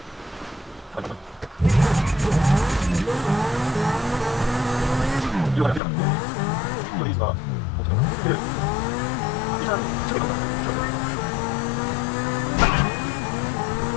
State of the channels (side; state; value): right; drops out; at 5.8 s